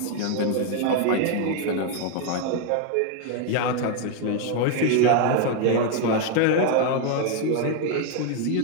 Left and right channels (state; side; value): different; both; correlation 0.01